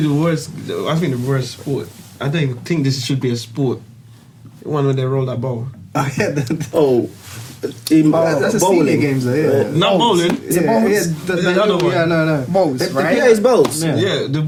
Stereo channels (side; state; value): both; identical; correlation 1.00